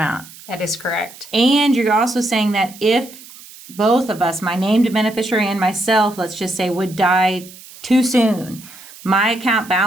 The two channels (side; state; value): right; noise; hiss, 19 dB below the sound